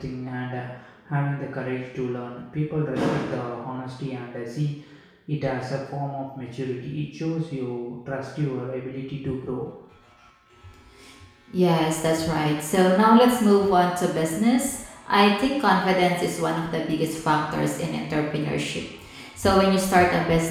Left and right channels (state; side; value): identical; both; correlation 1.00